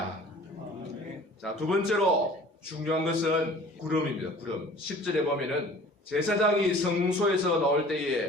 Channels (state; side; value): normal; both; correlation 0.47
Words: 자, 두 번째로 중요한 것은 구름입니다. 구름. 10절에 보면은 제사장이 성소에서 나올